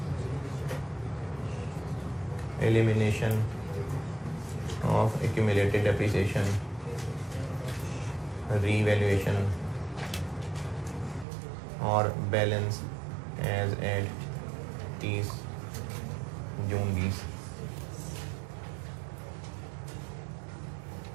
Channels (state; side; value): drops out; left; at 11.2 s